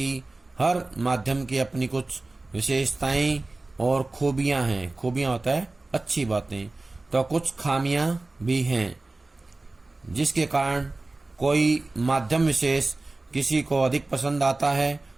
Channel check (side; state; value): left; quieter; 3.2 dB